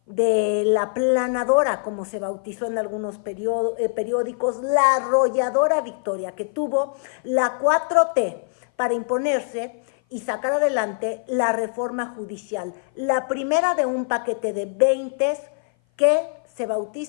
de la planadora, como se bautizó en algunos periódicos, la arrolladora victoria que tuvo la 4T para imponerse y sacar adelante la reforma judicial, la primera de un paquete de 20 que se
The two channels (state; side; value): silent; right; 57 dB below the other